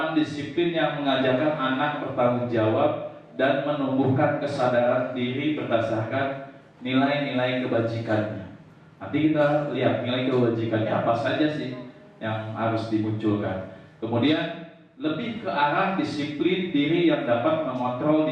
disiplin yang mengajarkan anak bertanggung jawab dan menumbuhkan kesadaran diri berdasarkan nilai-nilai kebajikannya. Nanti kita lihat nilai kebajikannya apa saja sih yang harus dimunculkan. Kemudian lebih ke arah disiplin diri yang dapat mengontrol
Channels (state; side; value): identical; both; correlation 1.00